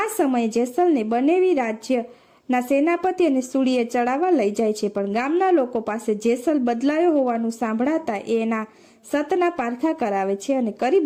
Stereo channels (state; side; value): identical; both; correlation 1.00